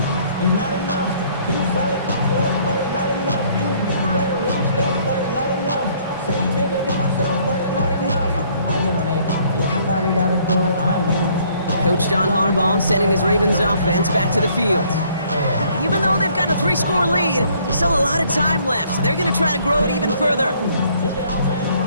It's not enough. You solid left, but it's not enough. You better release that, but it's not enough. Coach John Harbaugh sending his Ravens offense back to the field. Even though they've got a 3-score lead, still a lot of time left, so they're going to try to grow it even further.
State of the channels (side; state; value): both; inverted; correlation -0.62